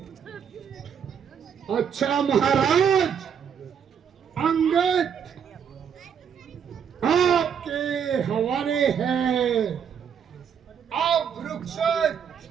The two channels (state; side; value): quieter; left; 7.7 dB